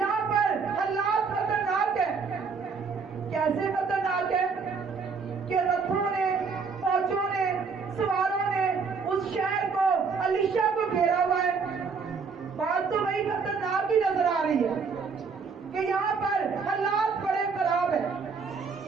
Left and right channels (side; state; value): left; quieter; 5.2 dB